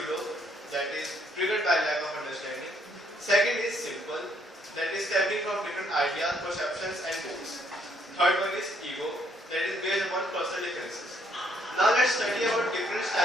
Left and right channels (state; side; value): normal; both; correlation 0.69